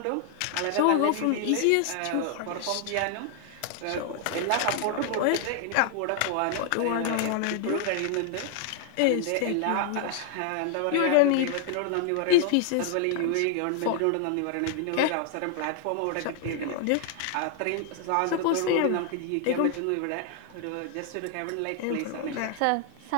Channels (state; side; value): different; both; correlation 0.00